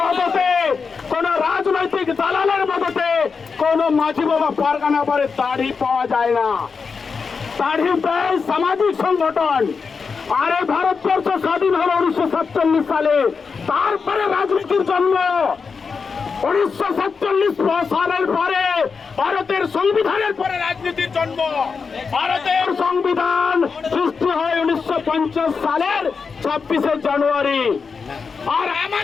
কোন রাজনৈতিক দালালের মদতে কোন মাঝি বাবা পারগানা বাড়ির দাড়ি পাওয়া যায় না। দাড়ি প্রায় সামাজিক সংগঠন। আরে ভারতবর্ষ স্বাধীন হলো 1947 সালে, তারপরে রাজনীতির জন্ম। 1947 সালের পরে ভারতের সংবিধানের পরে রাজনীতির জন্ম। ভারতের সংবিধান সৃষ্টি হয় 1950 সালের 26শে জানুয়ারি। আর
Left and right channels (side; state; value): right; quieter; 5.3 dB